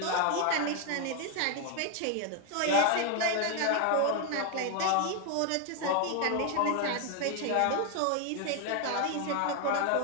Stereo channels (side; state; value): both; different; correlation 0.01